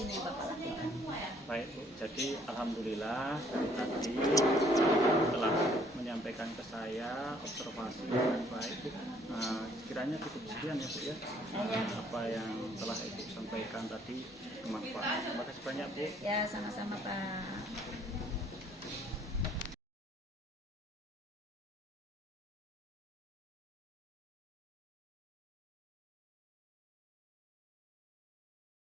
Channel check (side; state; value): both; normal; correlation 0.62